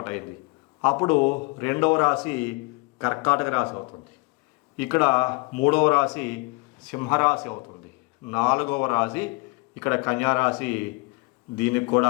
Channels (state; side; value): quieter; right; 28.5 dB